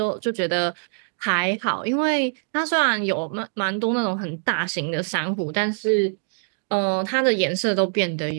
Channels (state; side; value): silent; left; digital silence